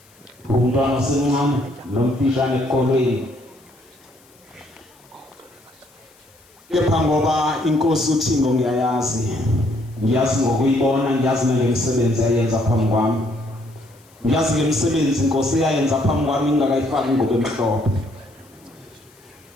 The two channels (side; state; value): left; noise; hiss, 30 dB below the sound